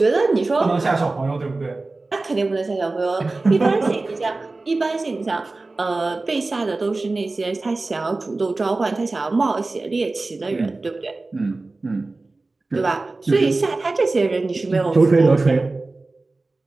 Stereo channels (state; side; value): quieter; left; 3.4 dB